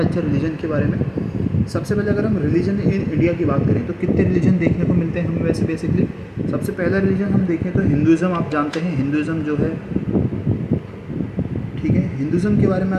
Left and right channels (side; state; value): both; identical; correlation 1.00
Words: रिलीजन के बारे में। सबसे पहले अगर हम रिलीजन इन इंडिया की बात करें तो कितने रिलीजन देखने को मिलते हैं हमें वैसे बेसिकली। सबसे पहला रिलीजन हम देखें तो हिंदुज़म। आप जानते हैं हिंदुज़म जो है, ठीक है, हिंदुज़म के बारे में